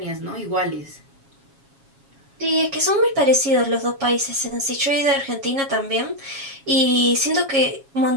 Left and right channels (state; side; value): late; left; 7.3 ms